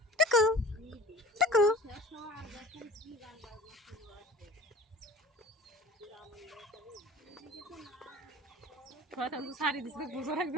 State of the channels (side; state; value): both; normal; correlation 0.42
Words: টুকু টুকু শাড়ি দিচ্ছে বুঝো